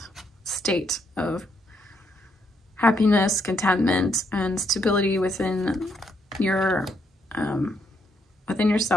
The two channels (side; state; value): both; normal; correlation 0.75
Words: state of happiness, contentment, and stability within your within